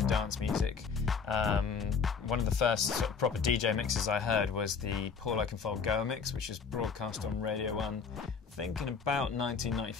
dance music. One of the first sort of proper DJ mixes I heard was the Paul Oakenfold Go mix, which was broadcast on Radio 1, I think in about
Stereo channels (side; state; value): right; quieter; 5.7 dB